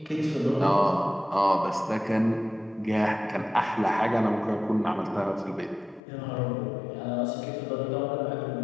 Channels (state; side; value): drops out; right; at 6.0 s